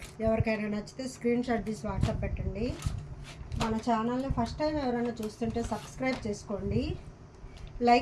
ఎవరికైనా నచ్చితే స్క్రీన్ షాట్ తీసి వాట్సాప్ పెట్టండి. మన ఛానల్ని ఫస్ట్ టైం ఎవరైనా చూస్తుంటే సబ్స్క్రైబ్ చేసుకోండి,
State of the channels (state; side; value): identical; both; correlation 1.00